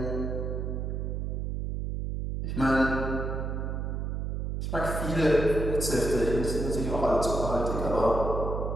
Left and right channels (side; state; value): right; noise; hum, 2 dB below the sound